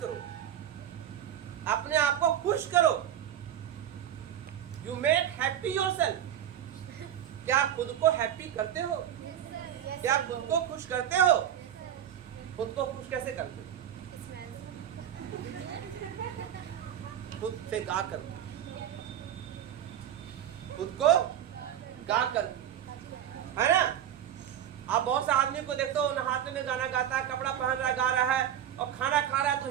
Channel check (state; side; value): quieter; left; 10.4 dB